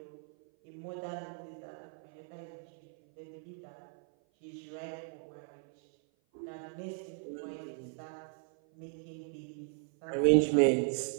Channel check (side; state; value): left; silent; 53 dB below the other